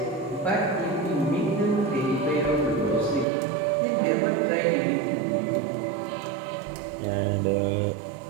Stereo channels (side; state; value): left; drops out; at 3.2 s